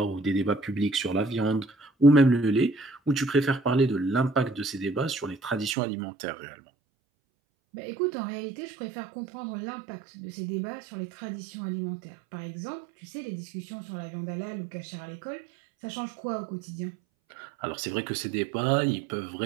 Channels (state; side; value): drops out; left; at 5.8 s